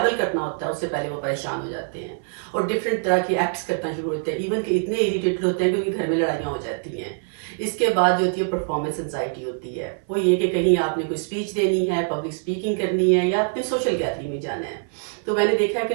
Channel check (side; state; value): left; silent; 63 dB below the other